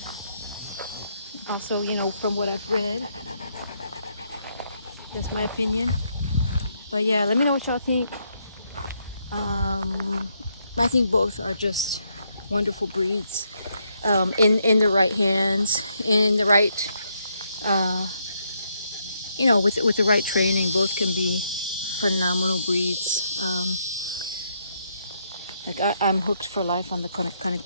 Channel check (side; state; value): both; inverted; correlation -0.76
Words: also, from what I've read, that's my opinion. But yeah, let me know what y'all think. I think both are just wonderful breeds. In the right hands, in the right, with the right training, both can be phenomenal breeds. I'm hooked for life on the Cane